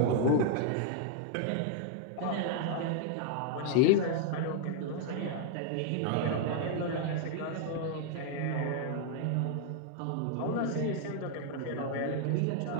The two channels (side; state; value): both; different; correlation 0.00